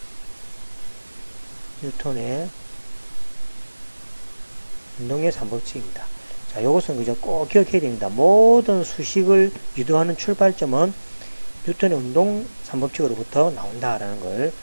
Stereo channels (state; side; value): inverted; both; correlation -1.00